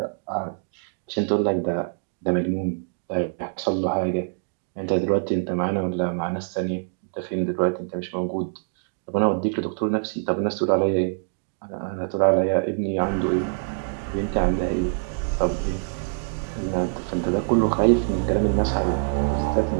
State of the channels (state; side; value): silent; left; digital silence